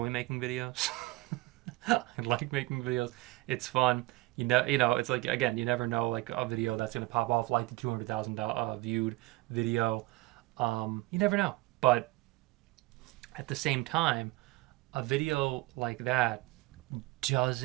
making videos. I like making videos. It's fun. You know, it's like, again, you never know, like a video that's going to pop off like the 200,000 viewed video. You never know. But at the same time, a video like that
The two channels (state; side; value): quieter; left; 21.0 dB